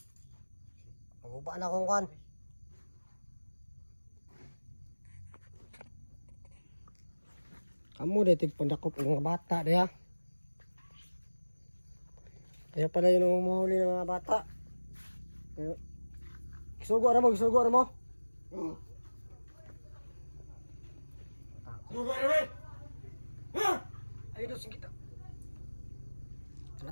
Maguba na akong kan. Kamu detik pandakop ng mga bata diha. Kaya pala yun ang umuhuli ng mga bata. Gisugo na mo, gisugo na mo. Ayun daw, singkita.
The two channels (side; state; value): both; inverted; correlation -1.00